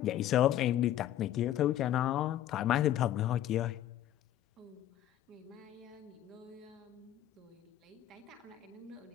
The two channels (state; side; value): quieter; right; 12.3 dB